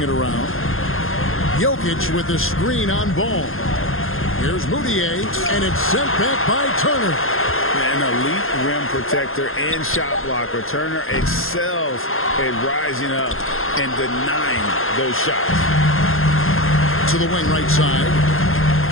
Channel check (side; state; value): right; late; 0.60 ms